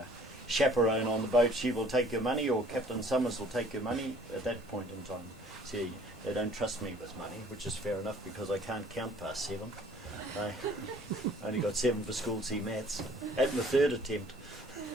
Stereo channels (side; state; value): both; normal; correlation 0.55